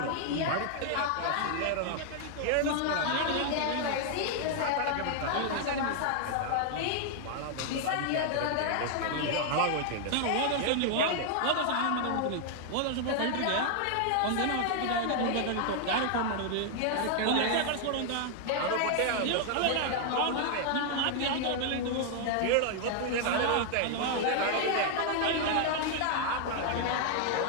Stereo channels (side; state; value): both; different; correlation 0.00